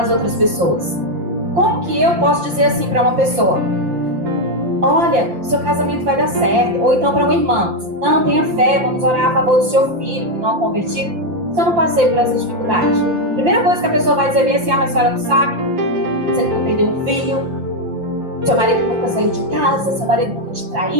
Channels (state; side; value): late; left; 5.8 ms